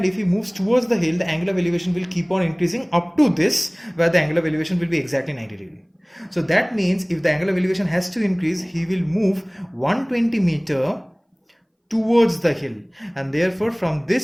if he moves towards the hill, the angle of elevation will keep on increasing up to this, where the angle of elevation will be exactly 90 degree. So that means if the angle of elevation has to increase, he will move 120 meter towards the hill, and therefore from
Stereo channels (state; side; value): identical; both; correlation 1.00